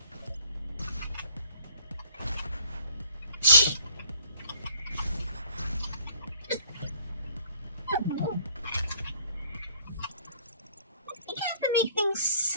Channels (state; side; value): inverted; both; correlation -0.57